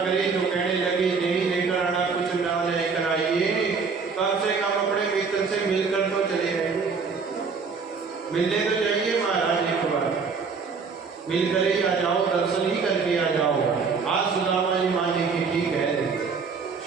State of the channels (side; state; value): left; quieter; 5.2 dB